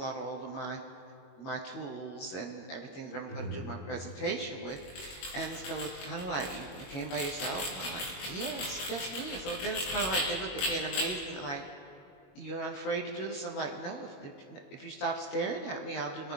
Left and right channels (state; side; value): late; right; 22 ms